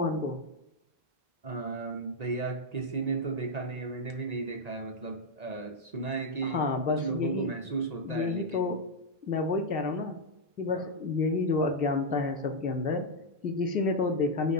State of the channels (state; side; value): late; left; 1.9 ms